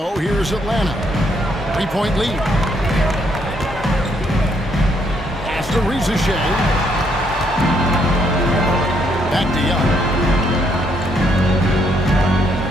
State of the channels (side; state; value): both; normal; correlation 0.72